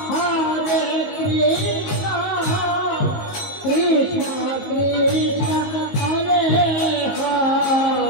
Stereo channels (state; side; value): late; right; 19 ms